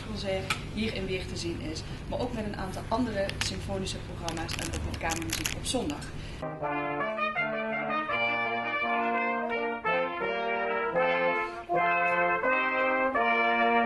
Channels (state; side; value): identical; both; correlation 1.00